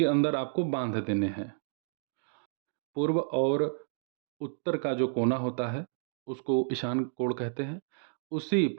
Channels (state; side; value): silent; left; digital silence